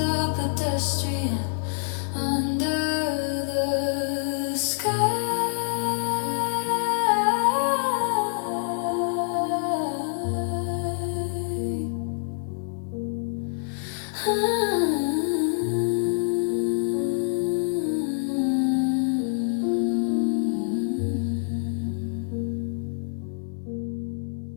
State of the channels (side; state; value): right; silent; digital silence